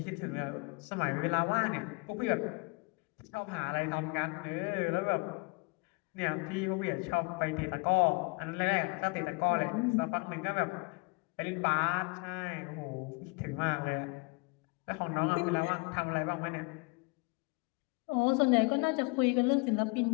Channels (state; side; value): quieter; right; 30.0 dB